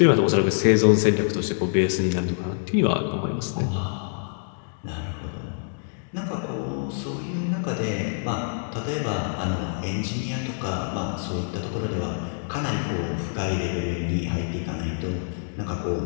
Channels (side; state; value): right; silent; digital silence